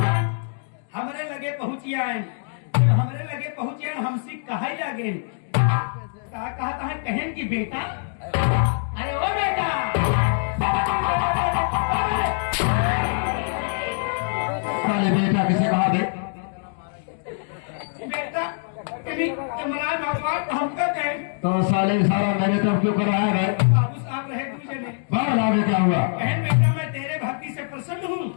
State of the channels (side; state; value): right; silent; digital silence